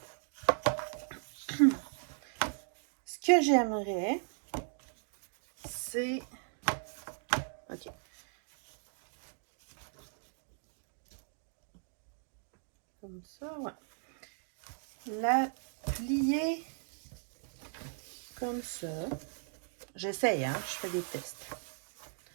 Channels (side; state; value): left; silent; digital silence